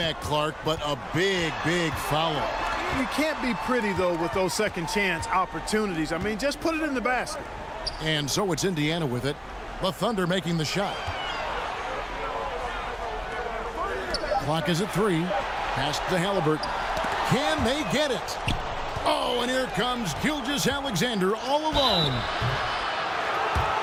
Clark, but a big, big foul. You can't be pretty, though, with those second-chance opportunities. I mean, just put it in the basket. And so it's Indiana with it. The Thunder making the shot. Clock is at 3. Pass to Halliburton. Can they get it? Oh, and here comes Gilgeous-Alexander all alone.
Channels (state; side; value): identical; both; correlation 1.00